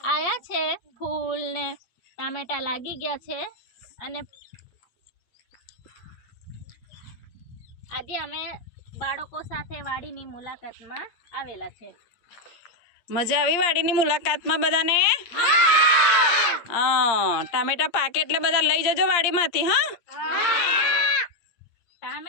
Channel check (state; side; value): late; right; 8.7 ms